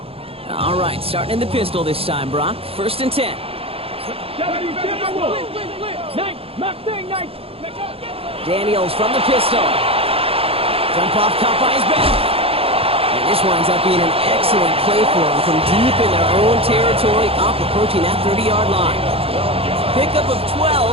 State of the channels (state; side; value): late; left; 0.28 ms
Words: All right, starting in the pistol this time, Brock. 1st and 10. Daniels from the pistol. Jump off caught by his back. And this winds up being an excellent play for him from deep in their own territory, up approaching that 30-yard line. Pickup of